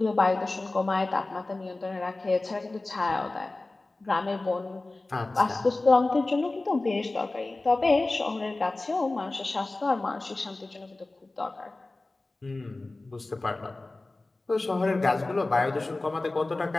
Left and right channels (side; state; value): right; quieter; 3.1 dB